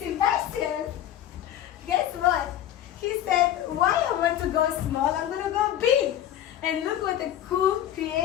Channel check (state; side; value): quieter; right; 11.6 dB